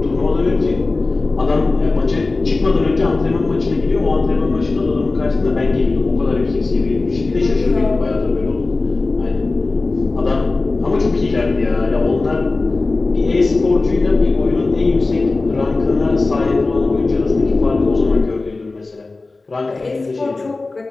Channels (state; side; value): quieter; right; 3.5 dB